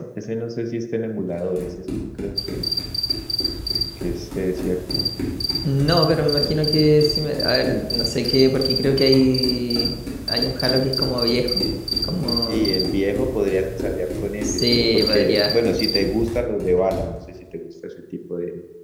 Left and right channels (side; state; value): both; identical; correlation 1.00